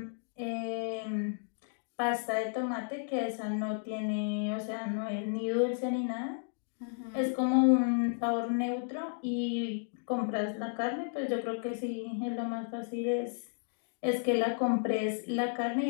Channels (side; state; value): right; silent; digital silence